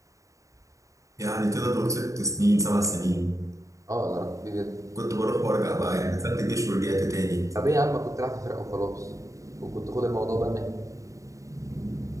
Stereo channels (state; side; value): late; left; 0.16 ms